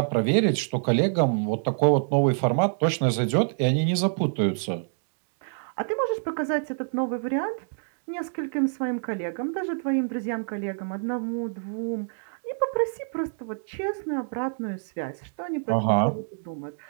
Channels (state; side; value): silent; left; digital silence